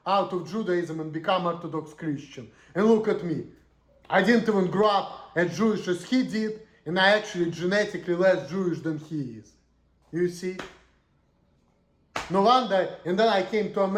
out of Judaism and became Orthodox Christian. And look at me. I didn't even grow up as Jewish as he did, and I actually genetically less Jewish than he is. You see? No wonder, and then I came to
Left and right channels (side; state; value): both; identical; correlation 1.00